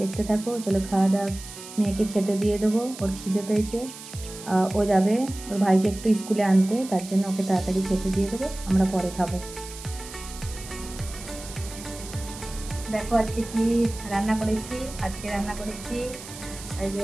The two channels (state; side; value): noise; right; hiss, 14 dB below the sound